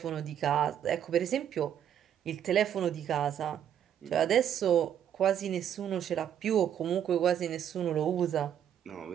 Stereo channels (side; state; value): left; quieter; 9.6 dB